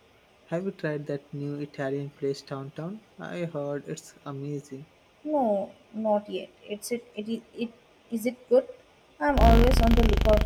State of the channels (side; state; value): both; identical; correlation 1.00